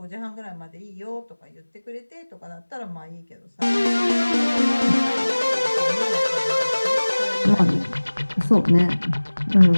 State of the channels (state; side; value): inverted; both; correlation -1.00